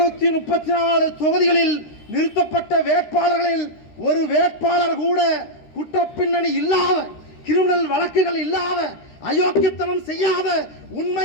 தொகுதிகளில் நிறுத்தப்பட்ட வேட்பாளர்களில் ஒரு வேட்பாளர் கூட குற்றப்பின்னணி இல்லாத, கிரிமினல் வழக்குகள் இல்லாத, அயோக்கியத்தனம் செய்யாத,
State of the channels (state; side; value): late; right; 13 ms